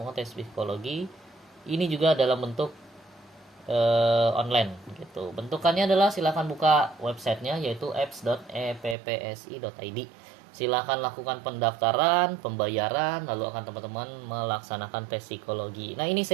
tes psikologi. Ini juga dalam bentuk online gitu. Bentukannya adalah silakan buka websitenya, yaitu apps.eppsi.id. Silakan lakukan pendaftaran, pembayaran, lalu akan teman-teman melaksanakan tes psikologi. Nah, ini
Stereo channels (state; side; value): drops out; left; at 9.0 s